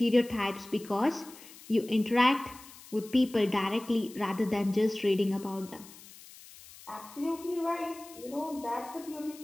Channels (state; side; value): noise; left; hiss, 19 dB below the sound